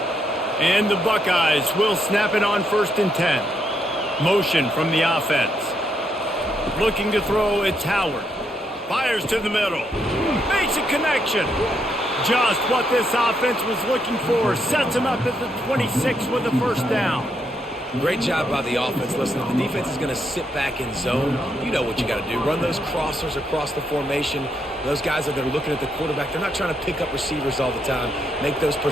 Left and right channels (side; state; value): both; normal; correlation 0.77